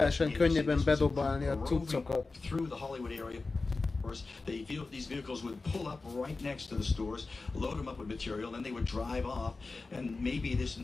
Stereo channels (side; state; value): right; quieter; 3.8 dB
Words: könnyebben bedobálni a cuccokat. These vehicles would pull up right next to the stores, load them up with material, then they would drive off, and maybe this